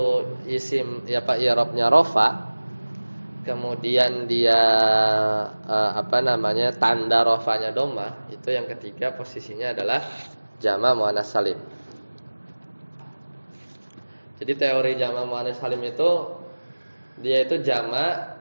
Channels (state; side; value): inverted; both; correlation -1.00